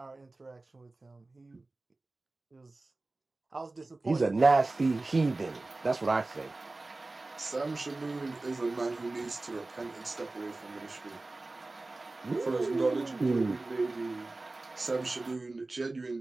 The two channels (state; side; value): quieter; left; 3.1 dB